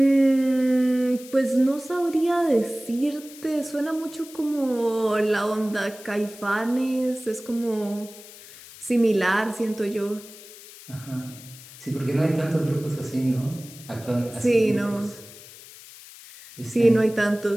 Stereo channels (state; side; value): noise; left; hiss, 18 dB below the sound